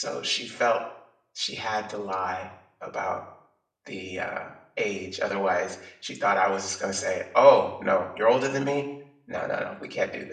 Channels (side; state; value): both; identical; correlation 1.00